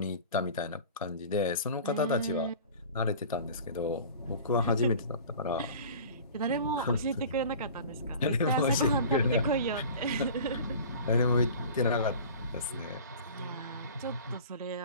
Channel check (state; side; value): inverted; both; correlation -0.40